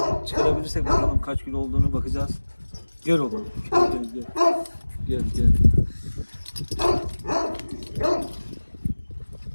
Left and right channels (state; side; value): inverted; both; correlation -1.00